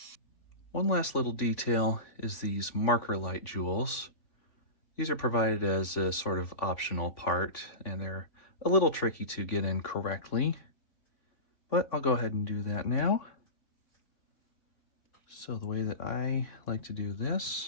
One last little detail is these marker light jewels. These are provided as a sort of optional part, and they're a little tricky to get in correctly, but I'll go ahead and do that now. So the way that I like to do this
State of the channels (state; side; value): late; right; 3.5 ms